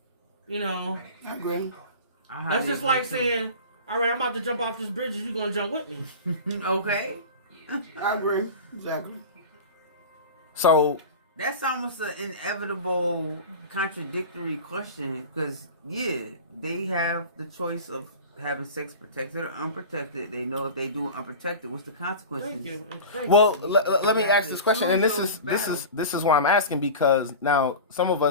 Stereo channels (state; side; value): inverted; both; correlation -0.32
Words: You know, I agree. that's just like saying, all right, I'm about to jump off this bridge. You going to jump with me? Okay. I agree. Exactly. So That's almost an inevitable contradictory question because, yeah, they have the choice of having sex protected or unprotected. They know if they do unprotected, what's the consequences? Thank you. Thank Well, you. let me ask this question, and Choose those this is why I'm asking, because now some of